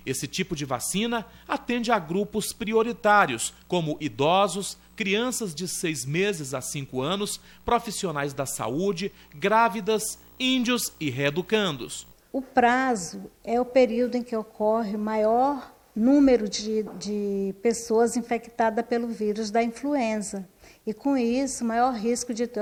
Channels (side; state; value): both; identical; correlation 1.00